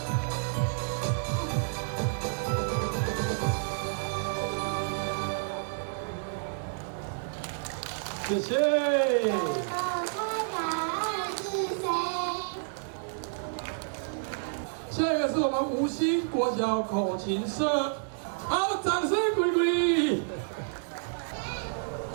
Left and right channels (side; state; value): left; silent; digital silence